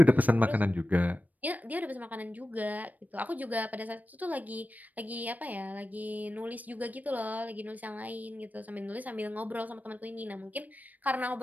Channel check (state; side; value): late; left; 0.079 ms